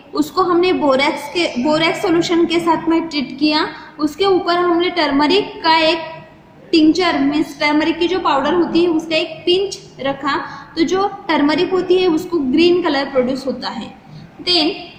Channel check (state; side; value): identical; both; correlation 1.00